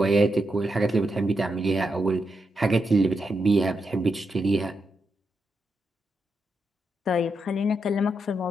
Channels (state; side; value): normal; both; correlation 0.84